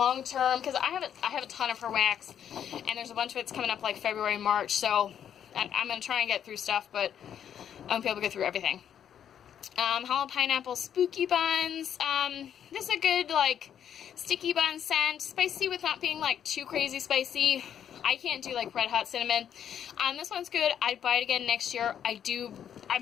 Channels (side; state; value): right; quieter; 9.2 dB